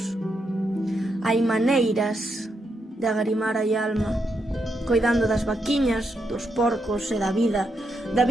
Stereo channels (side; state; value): both; normal; correlation 0.82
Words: Hai maneiras de agarimar a alma, coidando das vaquiñas, dos porcos e da